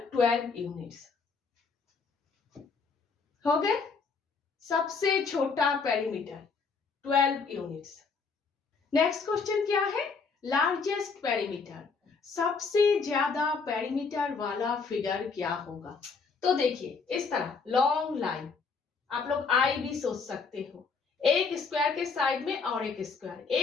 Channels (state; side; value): quieter; right; 4.9 dB